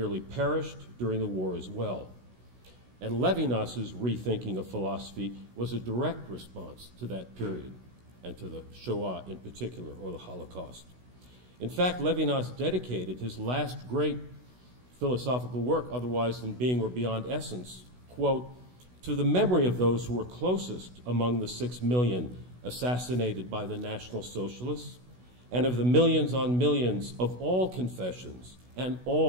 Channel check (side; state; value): left; late; 16 ms